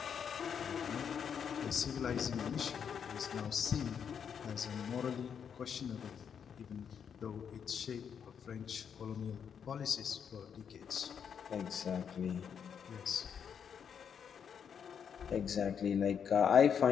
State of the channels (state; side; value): quieter; right; 7.5 dB